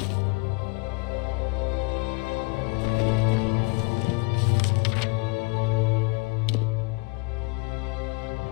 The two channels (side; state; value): right; quieter; 28.0 dB